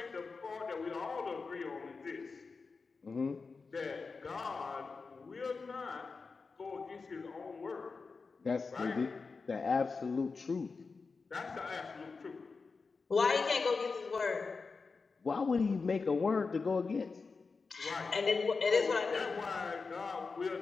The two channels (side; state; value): right; quieter; 4.5 dB